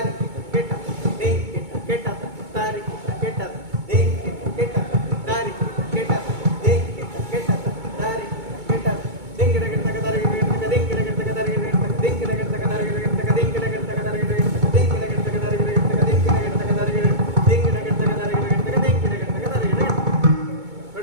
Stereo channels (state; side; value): late; left; 2.2 ms